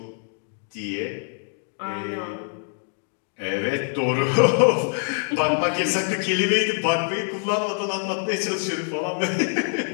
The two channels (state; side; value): silent; right; 62 dB below the other